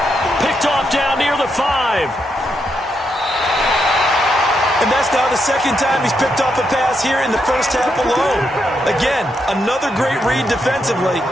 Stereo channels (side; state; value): both; normal; correlation 0.81